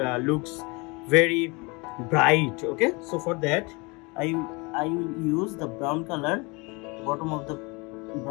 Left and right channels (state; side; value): quieter; right; 27.7 dB